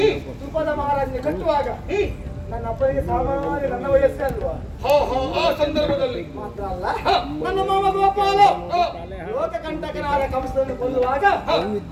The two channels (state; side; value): identical; both; correlation 1.00